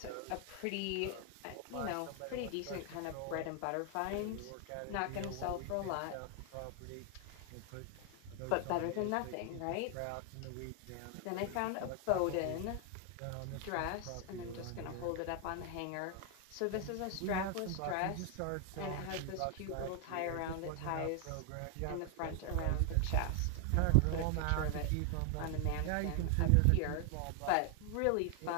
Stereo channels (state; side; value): different; both; correlation 0.00